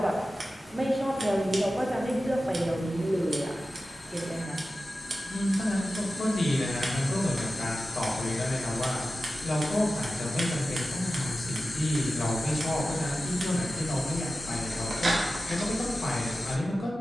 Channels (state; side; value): normal; both; correlation 0.94